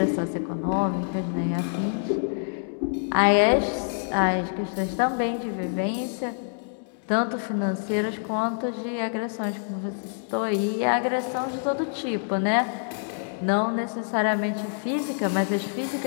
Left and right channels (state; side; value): silent; right; digital silence